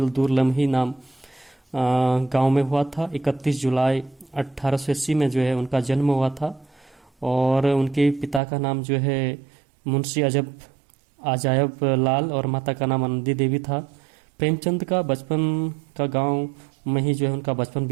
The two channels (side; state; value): left; drops out; at 8.4 s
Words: दूर लम्ही नाम गांव में हुआ था। 31 जुलाई 1880 में जो है उनका जन्म हुआ था। और उनके पिता का नाम जो है मुंशी अजायब लाल और माता का नाम आनंदी देवी था। प्रेमचंद का बचपन का गांव में ही जो है उनका बचपन